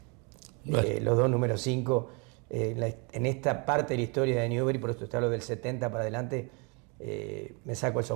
Bueno. Los dos números 5 en esta parte de la historia de Newbery, por eso te hablo del 70 para adelante, me saco el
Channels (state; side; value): quieter; left; 32.5 dB